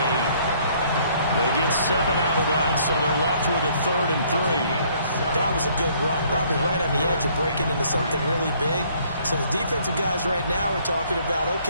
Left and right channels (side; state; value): both; inverted; correlation -0.62